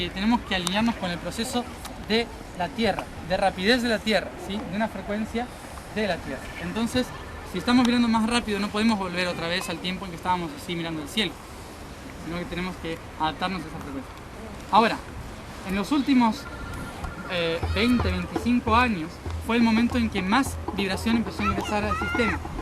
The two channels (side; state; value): both; identical; correlation 1.00